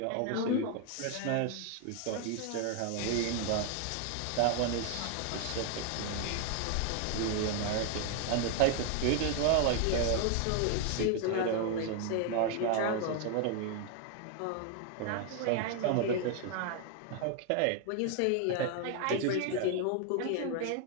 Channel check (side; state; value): both; different; correlation 0.00